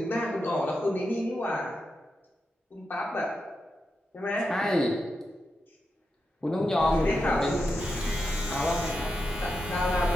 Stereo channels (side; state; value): both; normal; correlation 0.87